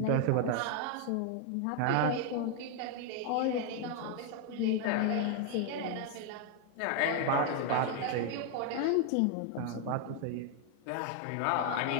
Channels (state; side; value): different; both; correlation 0.00